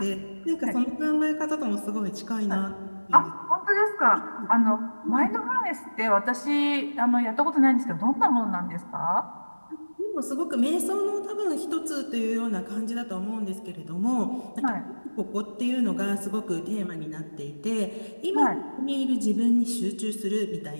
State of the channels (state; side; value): inverted; both; correlation -1.00